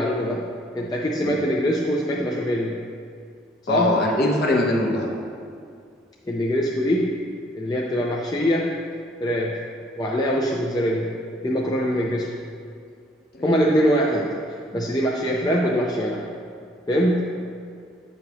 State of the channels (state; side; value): normal; both; correlation 0.61